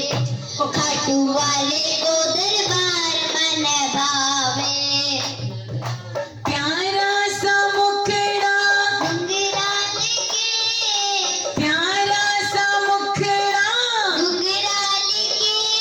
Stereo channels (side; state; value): both; identical; correlation 1.00